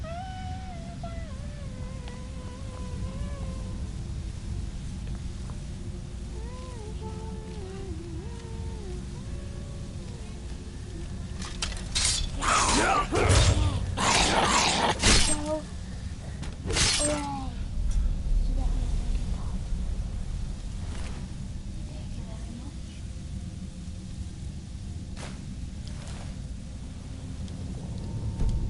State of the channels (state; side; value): identical; both; correlation 1.00